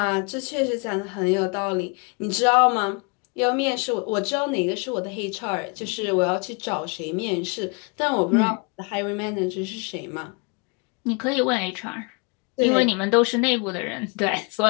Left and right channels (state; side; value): quieter; right; 32.8 dB